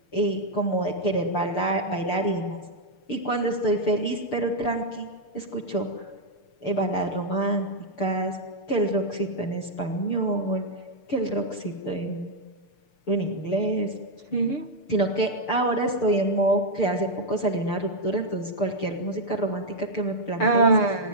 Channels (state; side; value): late; right; 6.8 ms